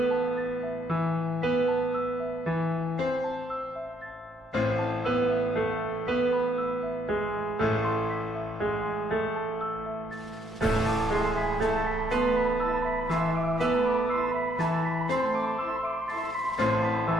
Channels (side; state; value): both; normal; correlation 0.71